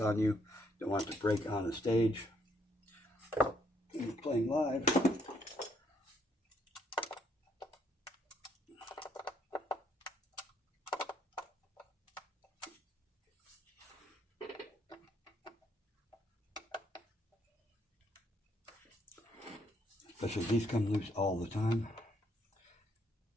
on you. Don't want it to break on the stage. When you're playing live, especially these come loose all the time.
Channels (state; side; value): normal; both; correlation 0.71